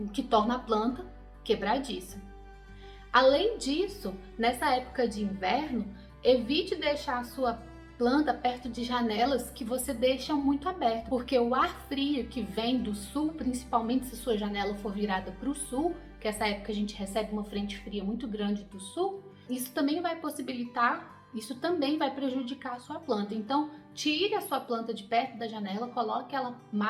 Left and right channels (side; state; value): both; identical; correlation 1.00